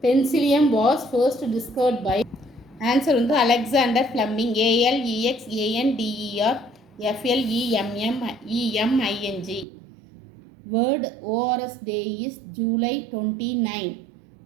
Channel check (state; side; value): drops out; left; at 9.7 s